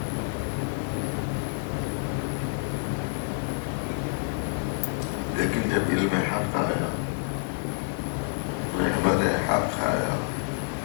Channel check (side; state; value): right; silent; digital silence